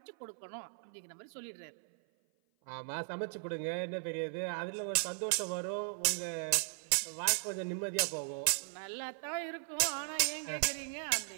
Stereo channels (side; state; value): left; silent; 53 dB below the other